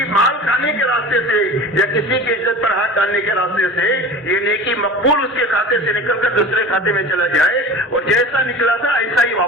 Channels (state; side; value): normal; both; correlation 0.35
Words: مال کھانے کے راستے سے یا کسی کی عزت پر ہاتھ ڈالنے کے راستے سے یہ نیکی مقبول اس کے کھاتے سے نکل کر دوسرے کھاتے میں چلا جائے اور جیسا نکلا تھا ایسا ہی